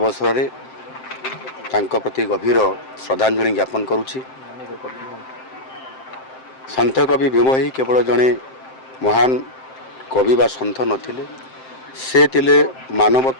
में तांको प्रति गभीर श्रद्धांजलि ज्ञापन करुछि। सन्थ कवि भीम ही केवल जड़े महान कवि बा सन्थ नथिले, से तिले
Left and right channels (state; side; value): late; right; 7.7 ms